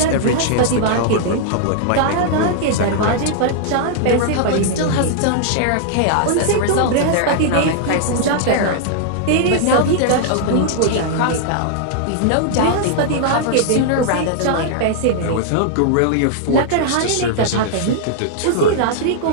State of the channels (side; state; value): both; different; correlation -0.01